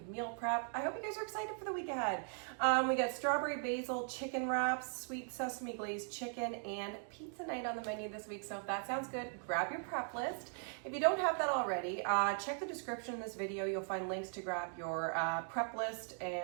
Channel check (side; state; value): left; silent; 52 dB below the other